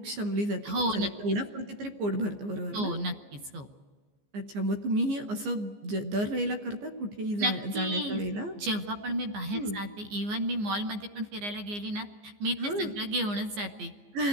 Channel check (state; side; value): late; left; 15 ms